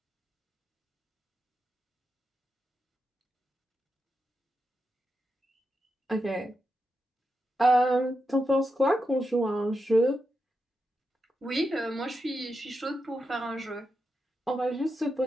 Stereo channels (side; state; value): both; normal; correlation 0.87